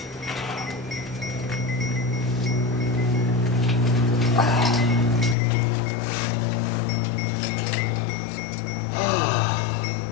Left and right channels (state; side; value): drops out; right; at 5.4 s